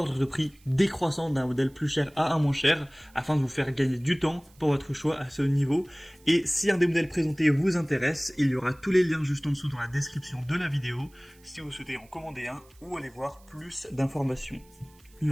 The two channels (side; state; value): right; noise; hiss, 29 dB below the sound